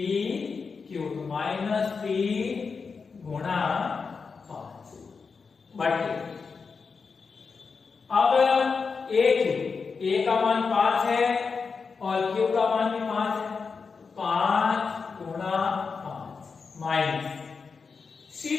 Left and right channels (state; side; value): quieter; right; 5.1 dB